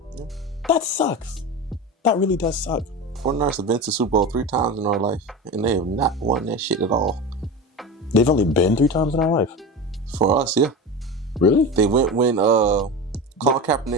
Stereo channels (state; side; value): normal; both; correlation 0.26